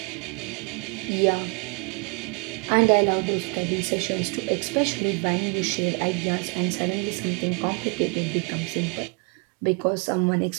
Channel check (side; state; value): left; quieter; 34.4 dB